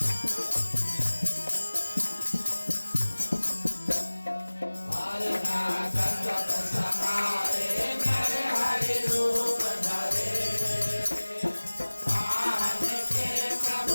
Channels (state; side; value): inverted; both; correlation -1.00